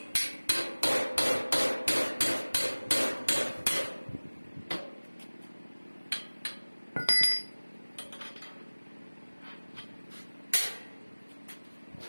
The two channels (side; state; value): both; inverted; correlation -1.00